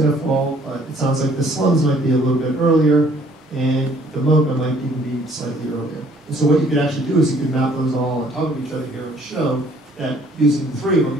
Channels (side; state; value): both; normal; correlation 0.60